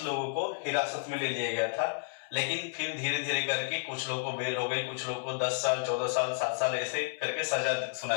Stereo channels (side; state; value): right; silent; 57 dB below the other